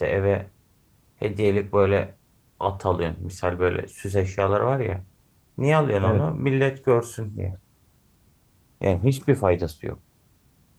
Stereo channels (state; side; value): identical; both; correlation 1.00